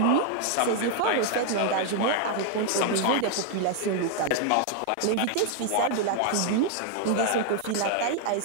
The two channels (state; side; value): different; both; correlation 0.00